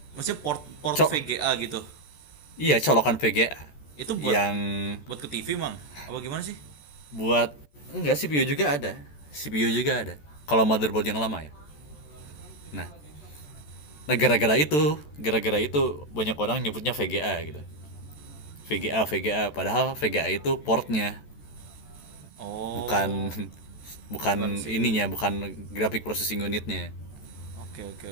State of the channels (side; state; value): right; late; 14 ms